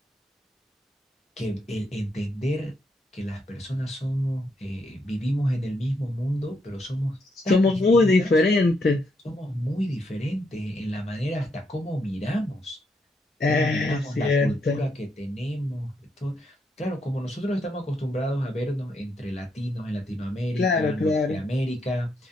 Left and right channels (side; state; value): both; normal; correlation 0.77